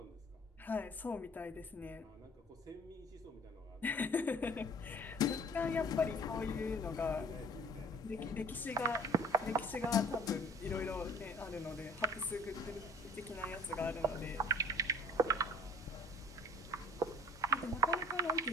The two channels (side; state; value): both; normal; correlation 0.49